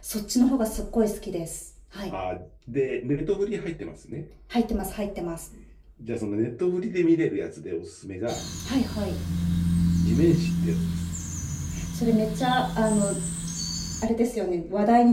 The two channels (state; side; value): identical; both; correlation 1.00